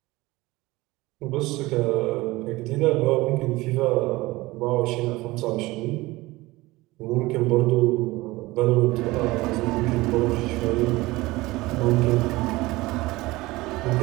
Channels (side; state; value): left; quieter; 20.2 dB